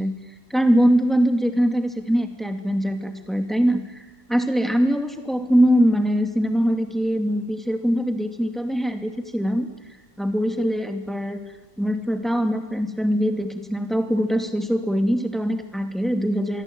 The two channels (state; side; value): normal; both; correlation 0.93